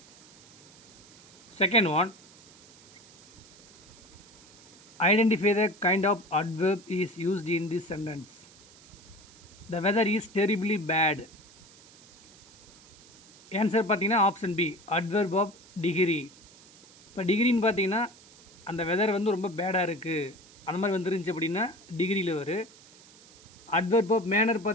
Second one, identify the kind of adverb is used in this sentence. The weather is terribly bad. Answer பார்த்தீங்கன்னா option B, adverb of degree. இப்போ டிகிரின்னு பார்த்தீங்கன்னா அந்த weather வந்து ரொம்ப பேடாக இருக்குது அந்த மாதிரி வந்துருந்துச்சு அப்படின்னா டிகிரியில் வரும். அட்வர்ப் ஆஃப் மேனர்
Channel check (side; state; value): right; noise; hiss, 24 dB below the sound